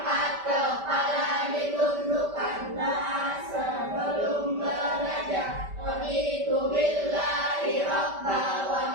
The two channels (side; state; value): left; late; 5.1 ms